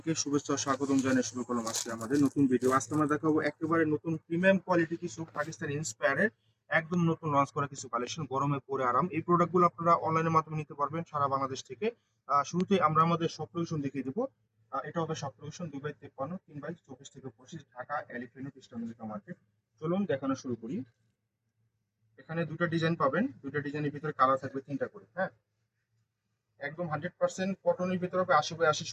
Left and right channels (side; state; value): both; identical; correlation 1.00